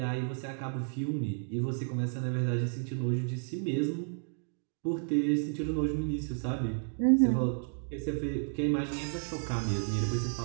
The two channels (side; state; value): left; silent; 56 dB below the other